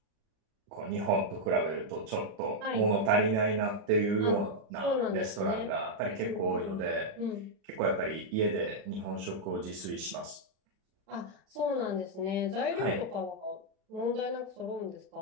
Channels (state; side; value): late; left; 36 ms